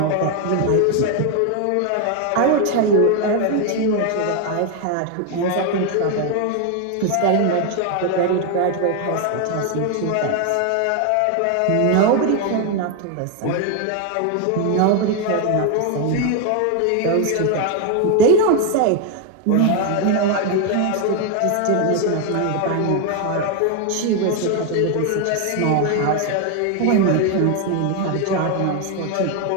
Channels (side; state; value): both; different; correlation 0.01